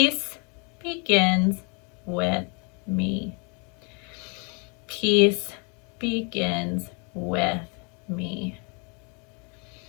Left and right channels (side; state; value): right; quieter; 34.2 dB